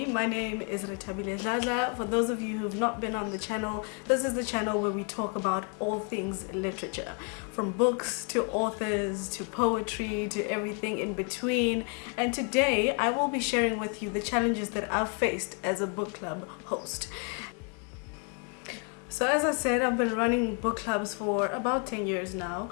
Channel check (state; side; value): quieter; right; 38.5 dB